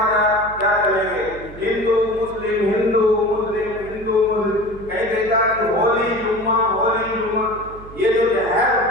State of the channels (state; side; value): noise; right; hum, 17 dB below the sound